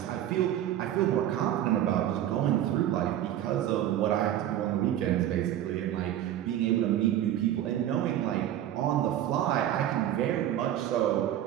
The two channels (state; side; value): quieter; left; 11.9 dB